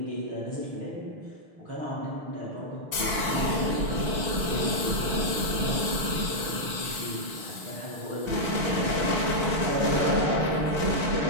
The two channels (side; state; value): left; late; 5.9 ms